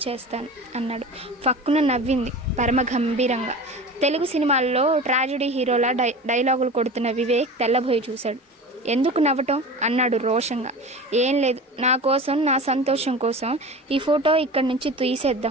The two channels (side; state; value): both; normal; correlation 0.34